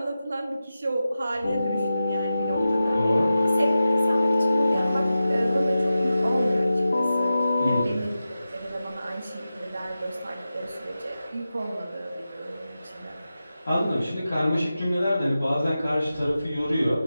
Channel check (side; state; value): both; inverted; correlation -0.93